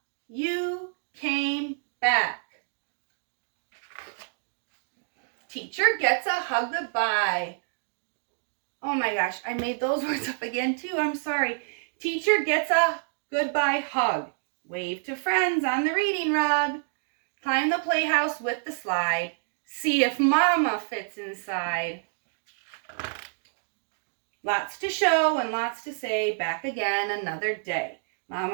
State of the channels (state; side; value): silent; left; digital silence